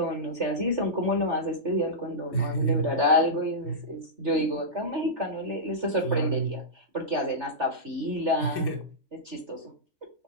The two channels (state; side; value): late; left; 3.3 ms